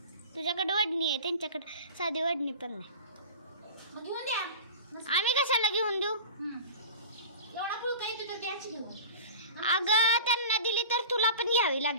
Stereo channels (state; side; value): inverted; both; correlation -0.36